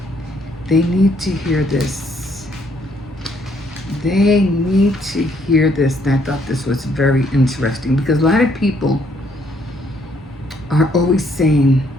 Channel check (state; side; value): normal; both; correlation 0.69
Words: They need to hear this. They need to hear this. And I thought this was very interesting because a lot of people are always saying,